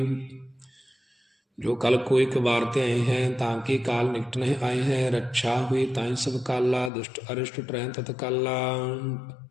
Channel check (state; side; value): drops out; right; at 6.9 s